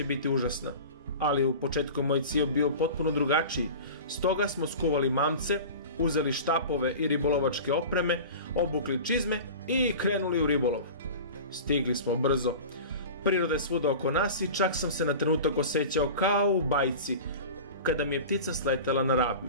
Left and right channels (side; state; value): both; inverted; correlation -0.34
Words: biti užasna. Ali u početku moj cilj bio potpuno drugačiji. Stoga smo skuvali mamce, uzeli štapove i ribolovačke opreme, obukli čizme i krenuli u ribolov. Stigli smo brzo. Priroda je svuda oko nas i čak sam se na trenutak osjećao kao u bajci, kada mi je ptica sletela na